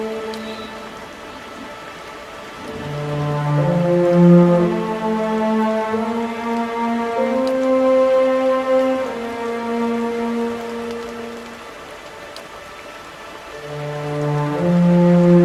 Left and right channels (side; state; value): both; identical; correlation 1.00